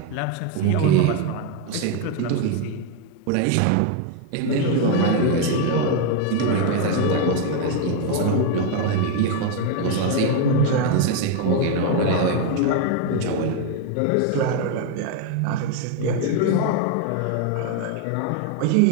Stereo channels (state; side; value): different; both; correlation 0.01